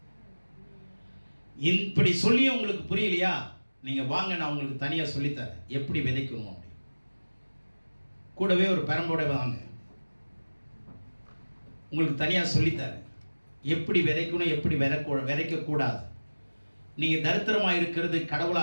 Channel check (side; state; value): both; inverted; correlation -1.00